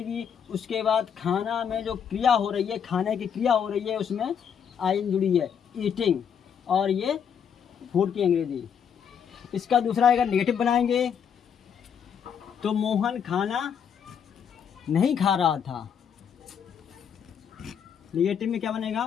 उसके बाद खाना में जो क्रिया हो रही है, खाने की क्रिया हो रही है, उसमें आइन जुड़ी है, ईटिंग, और ये फूड की अंग्रेजी। इसका दूसरा अगर नेगेटिव बनाएंगे तो मोहन खाना नहीं खा रहा था। नेगेटिव में क्या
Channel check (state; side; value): quieter; right; 7.7 dB